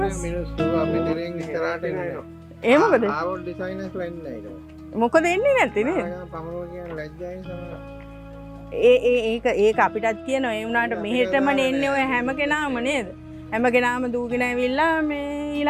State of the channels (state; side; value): identical; both; correlation 1.00